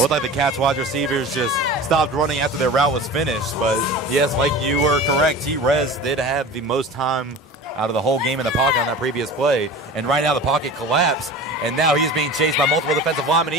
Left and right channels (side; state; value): both; normal; correlation 0.36